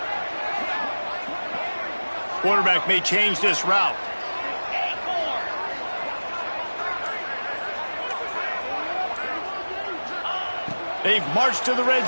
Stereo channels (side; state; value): both; inverted; correlation -1.00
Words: Quarterback may change this route. They've marched to the red